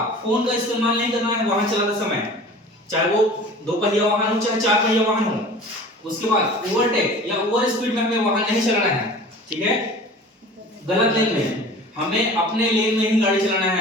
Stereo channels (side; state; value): both; normal; correlation 0.42